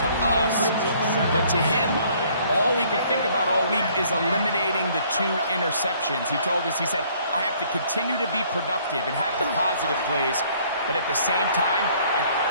to us. But to him, all he could think about all week is eliminating the 2 interceptions. He told us, he said, I have to continue to be productive and have the positive plays. But at the same time,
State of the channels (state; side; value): inverted; both; correlation -0.60